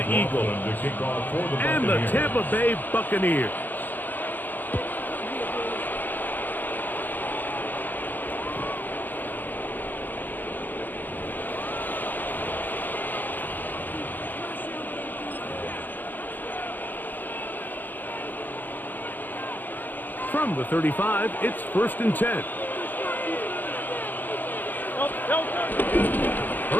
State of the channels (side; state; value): right; late; 0.086 ms